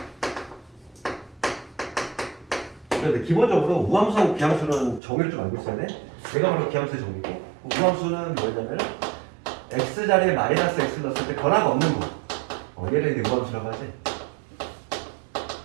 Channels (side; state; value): left; drops out; at 5.0 s